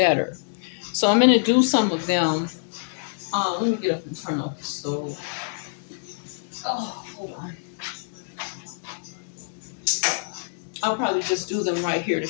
So I'm going to do some of them. Let me get up and turn off the stove. Oh, hold on. I'll probably just do them right here to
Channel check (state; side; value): silent; right; digital silence